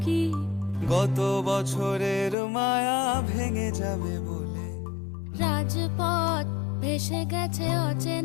গত বছরের মায়া ভেঙে যাবে বলে। রাজপথ ভেসে গেছে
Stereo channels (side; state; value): right; drops out; at 2.4 s